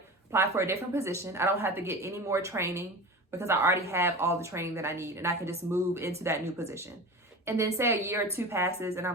Apply for a different position. I don't have to get any more training because I already have all the training that I need, and I can just move into that new position. And then say a year or two passes and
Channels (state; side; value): normal; both; correlation 0.32